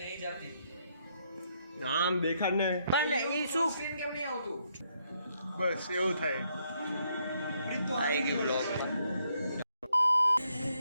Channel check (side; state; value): both; inverted; correlation -0.74